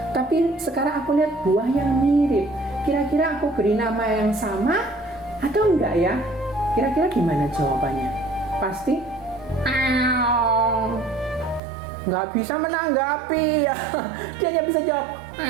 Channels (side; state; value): left; drops out; at 11.6 s